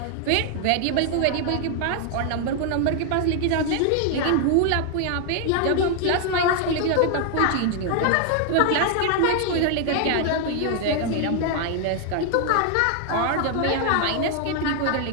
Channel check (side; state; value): both; different; correlation 0.00